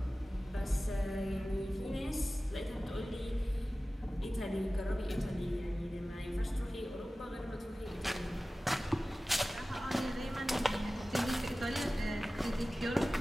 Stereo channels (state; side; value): normal; both; correlation 0.96